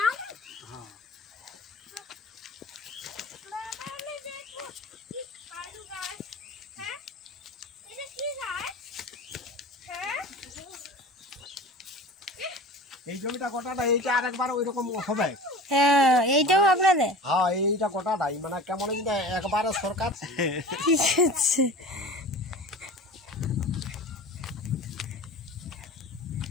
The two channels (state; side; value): normal; both; correlation 0.37